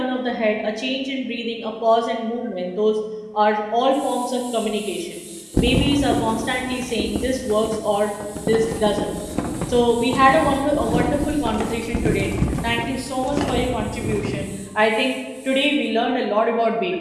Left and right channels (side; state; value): both; identical; correlation 1.00